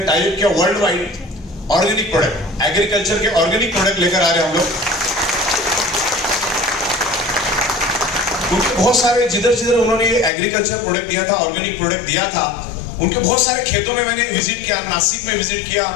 टाई किया, world wide organic product, agriculture के ऑर्गेनिक प्रोडक्ट लेकर आ रहे हैं हम लोग। उनके बहुत सारे जिधर उन्होंने एग्रीकल्चर प्रोडक्ट दिया था, ऑर्गेनिक प्रोडक्ट दिया था, उनके बहुत सारे खेतों में मैंने विजिट किया। नासिक में विजिट किया,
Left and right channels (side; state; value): right; drops out; at 10.3 s